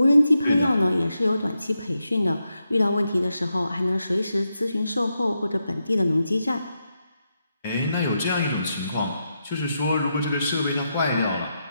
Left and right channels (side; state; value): both; inverted; correlation -0.85